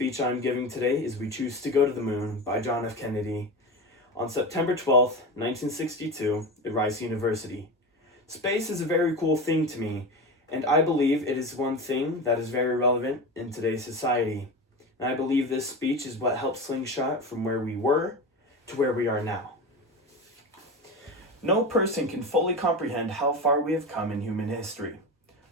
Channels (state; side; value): normal; both; correlation 0.25